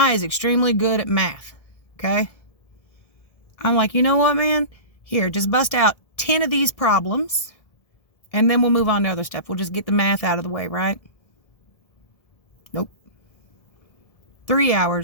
is extremely good at math, okay? I'm like, you know what, man? Here, just bust out 10 of these problems, and then we'll move on to other stuff. We'll just get the math out of the way, right? Nope. 3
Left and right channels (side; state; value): right; late; 1.7 ms